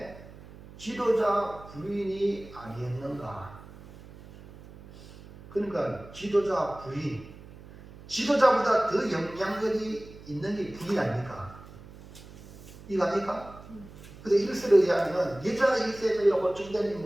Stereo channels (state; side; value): noise; right; hum, 18 dB below the sound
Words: 지도자 부인이 아니었는가? 그러니까 지도자 부인, 지도자보다 더 영향력이 있는 게 부인 아닙니까? 이거 아닙니까? 근데 일설에 의하면 여자 이세벨이라고 보충된